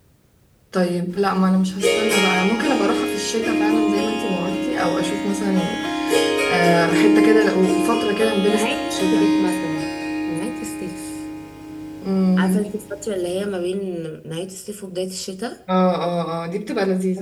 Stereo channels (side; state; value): both; identical; correlation 1.00